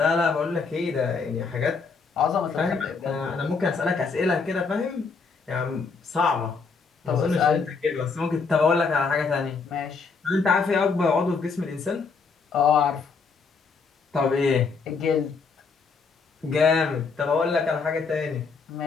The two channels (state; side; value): quieter; right; 5.0 dB